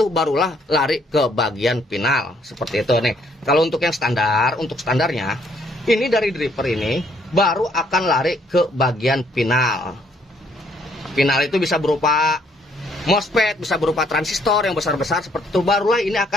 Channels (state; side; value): normal; both; correlation 0.67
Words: barulah lari ke bagian final seperti itu nih. Kalau untuk yang standar, untuk standarnya ini dari dripper ini baru akan lari ke bagian final. Final itu bisa berupa MOSFET, bisa berupa transistor yang besar-besar seperti itu. Barulah ini